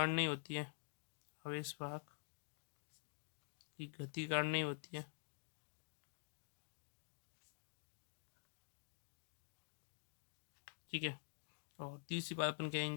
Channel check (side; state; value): right; silent; digital silence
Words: नहीं होती है, आवेश वाहक की गति कारण नहीं होती है। ठीक है, और तीसरी बात अपन